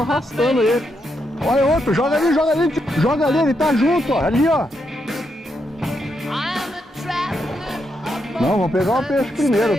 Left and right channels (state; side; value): normal; both; correlation 0.81